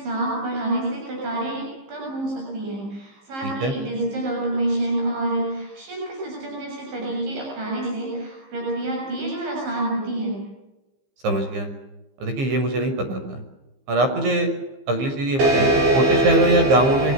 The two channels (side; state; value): left; late; 15 ms